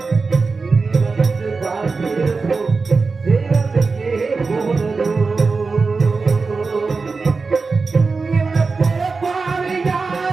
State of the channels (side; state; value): left; quieter; 4.3 dB